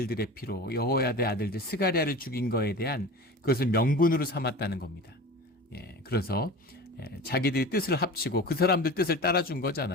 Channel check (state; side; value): normal; both; correlation 0.34